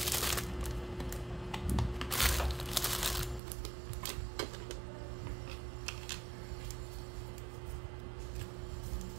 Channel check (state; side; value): drops out; left; at 3.4 s